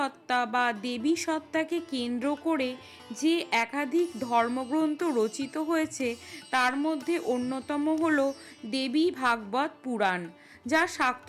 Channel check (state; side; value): identical; both; correlation 1.00